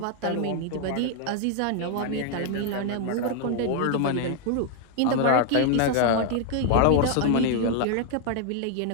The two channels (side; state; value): both; different; correlation 0.00